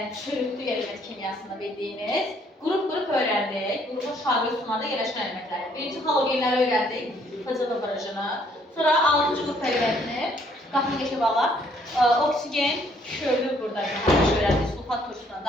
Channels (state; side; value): normal; both; correlation 0.65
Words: çürütlü element kimyasında bildiyiniz qrup öyrəndik. Qrupun şarlı sumada yerləşən elementləri. Birinci halogenləri öyrəndik, FCN barajını. Sonra 6-cı qrup elementini, baxın geçə bağla. Oksigen, körlü burada öyrəndik, sulfat turşusundan